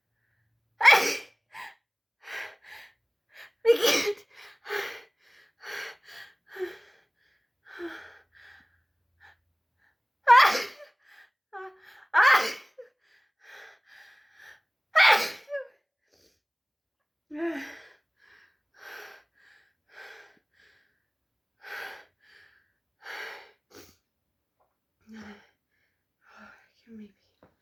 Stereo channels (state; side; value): identical; both; correlation 1.00